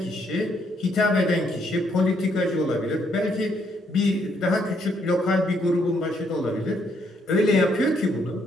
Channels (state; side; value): normal; both; correlation 0.72